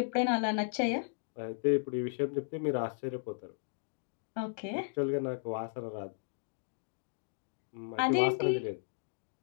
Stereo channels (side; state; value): right; silent; digital silence